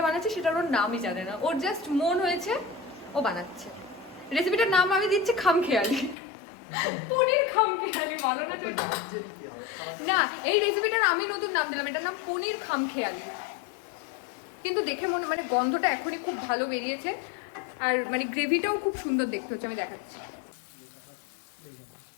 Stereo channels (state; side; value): drops out; right; at 6.2 s